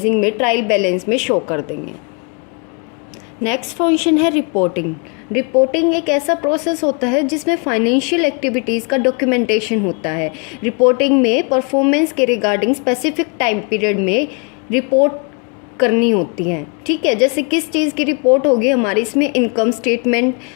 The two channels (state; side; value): quieter; right; 35.5 dB